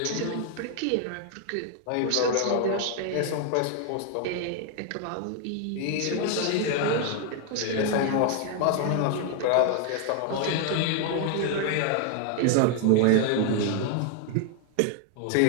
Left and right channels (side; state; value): both; different; correlation 0.00